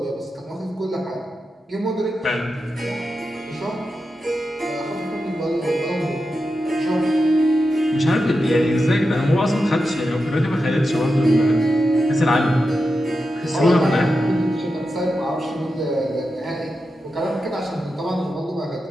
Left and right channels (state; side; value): normal; both; correlation 0.89